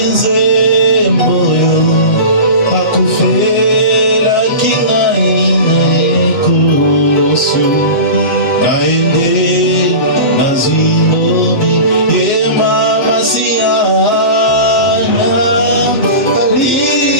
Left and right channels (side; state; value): right; late; 8.0 ms